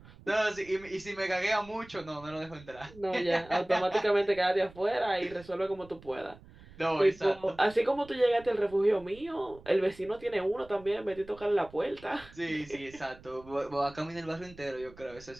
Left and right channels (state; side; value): noise; right; rumble, 21 dB below the sound